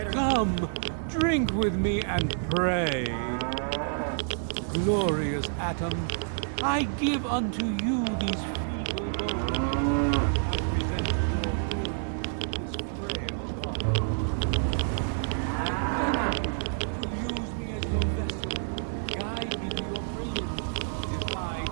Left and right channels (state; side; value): silent; left; digital silence